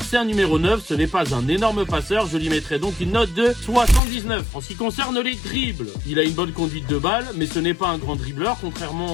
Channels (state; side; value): drops out; right; at 4.0 s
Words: c'est un numéro 9, ce n'est pas un énorme passeur, je lui mettrai donc une note de 79. En ce qui concerne les dribbles, il a une bonne conduite de balle, mais ce n'est pas un grand dribbleur,